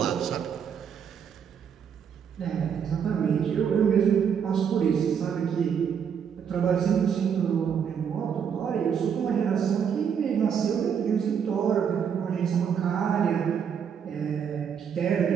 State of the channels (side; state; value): left; quieter; 7.5 dB